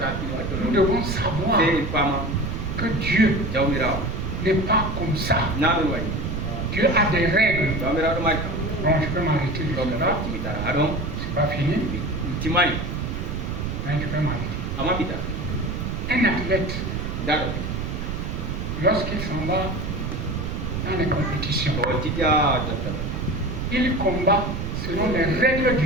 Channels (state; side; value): noise; right; rumble, 3 dB below the sound